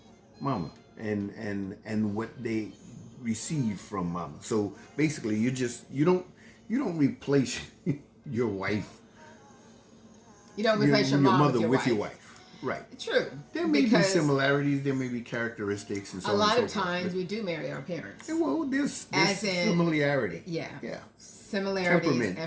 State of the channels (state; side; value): identical; both; correlation 1.00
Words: mama and what they receive from mama. So basically, you don't replace your wife. You don't replace your mother with your wife. Right. True. There may be similarities. There may be characteristics, and so on. A lot of times we do marry our parents. Well, there's similarity. Yeah. Yeah. Similarities.